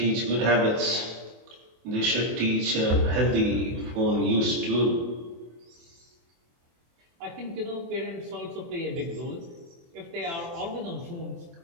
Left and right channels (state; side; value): late; left; 24 ms